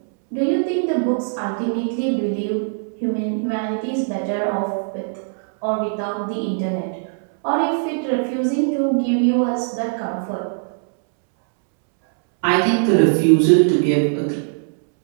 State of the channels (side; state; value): left; silent; 65 dB below the other